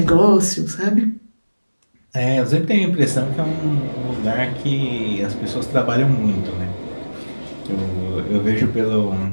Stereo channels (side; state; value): both; inverted; correlation -1.00